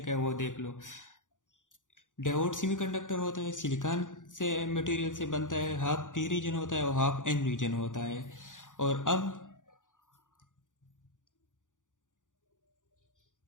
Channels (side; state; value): right; late; 0.87 ms